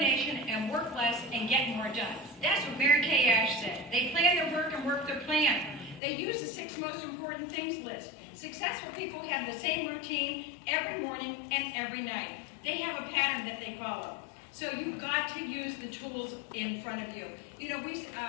and work less and get more done. That's what Mary Kay Ash said. They plan their work and work their plan. They use the 6 most important things list. Successful people have the same routine every morning and every night. They have a pattern that they follow. So you've got to use the tools in front of you. You know,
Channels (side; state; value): right; drops out; at 6.0 s